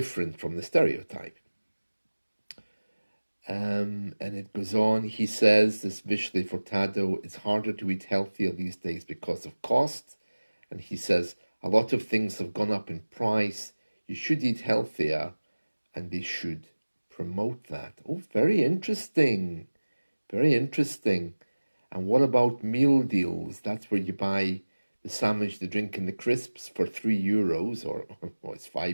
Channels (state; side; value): inverted; both; correlation -1.00